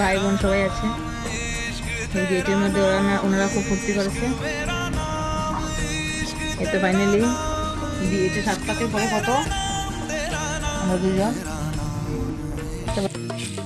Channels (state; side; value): identical; both; correlation 1.00